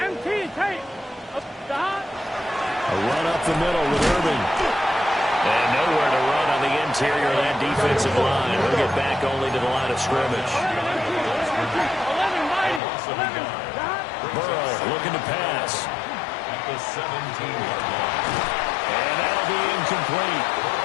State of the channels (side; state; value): right; drops out; at 12.8 s